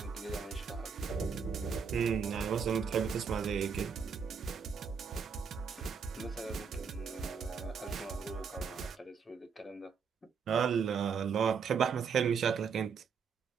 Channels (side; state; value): left; quieter; 6.2 dB